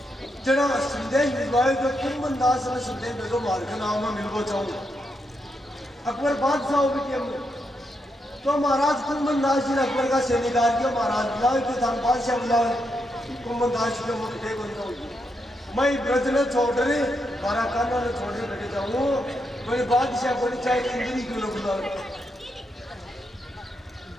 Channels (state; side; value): normal; both; correlation 0.82